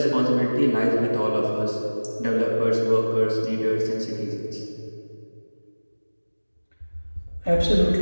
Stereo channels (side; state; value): both; inverted; correlation -1.00